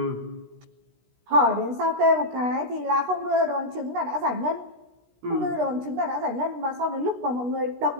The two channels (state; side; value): late; left; 16 ms